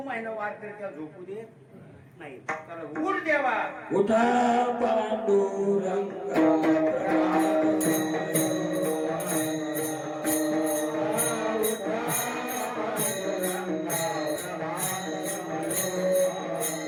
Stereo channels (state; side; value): identical; both; correlation 1.00